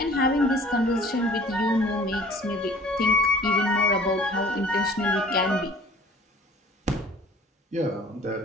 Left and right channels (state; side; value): normal; both; correlation 0.49